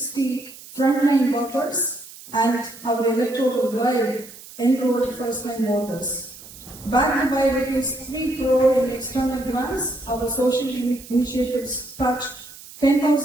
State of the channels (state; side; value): noise; right; hiss, 18 dB below the sound